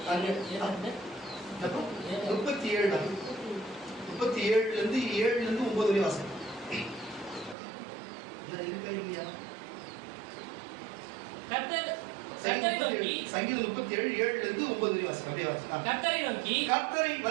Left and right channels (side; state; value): left; drops out; at 7.6 s